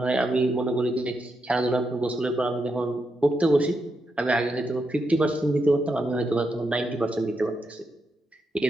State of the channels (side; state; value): both; normal; correlation 0.83